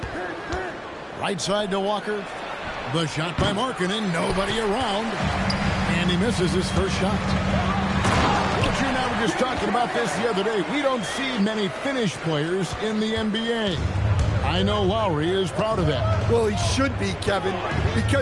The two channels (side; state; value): both; identical; correlation 1.00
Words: Right side to Walker. The shot by Markkanen. Nobody around. And he misses his first shot. But you and I were just talking about this the other day. We don't see many Finnish players in the NBA. I know Lowry is proud of that. Well, he should be, Kevin,